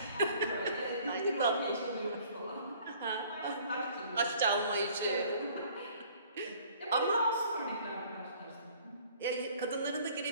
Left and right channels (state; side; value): inverted; both; correlation -0.55